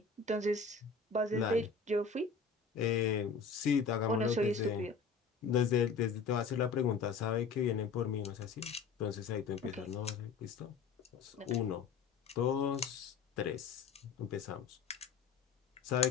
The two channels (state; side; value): quieter; right; 5.3 dB